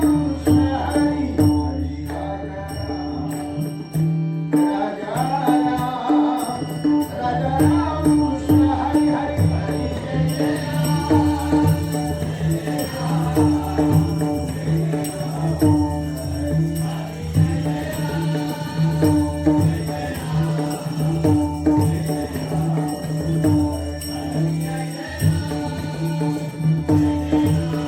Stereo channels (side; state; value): both; identical; correlation 1.00